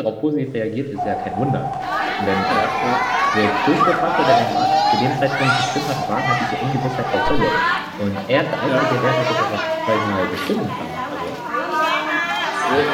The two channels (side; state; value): both; identical; correlation 1.00